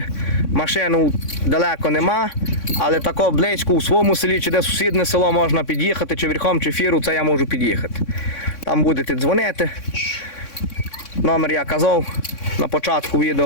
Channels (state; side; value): late; right; 3.6 ms